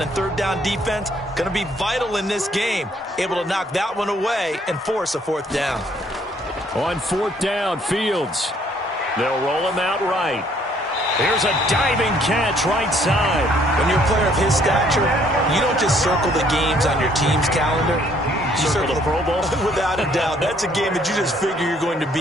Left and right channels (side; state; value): both; normal; correlation 0.64